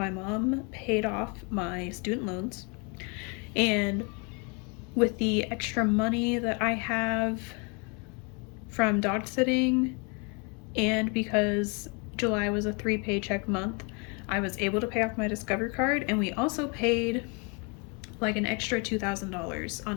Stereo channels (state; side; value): quieter; right; 33.2 dB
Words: mom paid off my student loans. And with the extra money that I have from dog sitting, and because July was a 3 paycheck month, I was able to pay off my Discover card, and we also paid like an extra $2,000